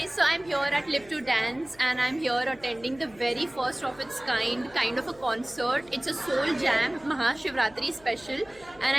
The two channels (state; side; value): noise; left; hum, 25 dB below the sound